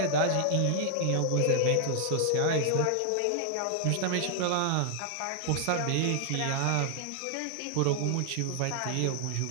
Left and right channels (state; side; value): different; both; correlation 0.00